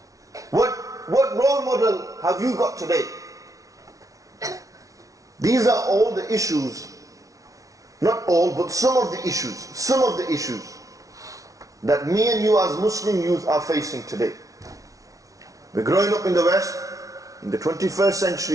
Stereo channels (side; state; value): left; late; 0.17 ms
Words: What role model have you got today? These are all the issues, not all, but some of the issues that me and you as Muslim youth are facing today. We're growing up in the West, in the 21st